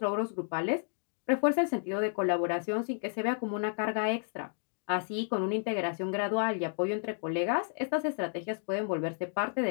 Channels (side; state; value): right; silent; digital silence